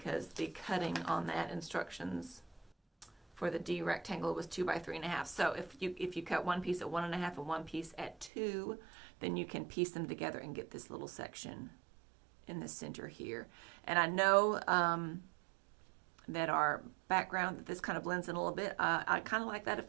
the cutting on that instructions for the D rectangle was 2 by 3.5. So if you cut one piece at 1.5 and one piece at 2, then you can piece them together and get this little section in the center here. And I know that our background, that this kind of blends in a little bit. I kind of like that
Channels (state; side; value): drops out; left; at 8.3 s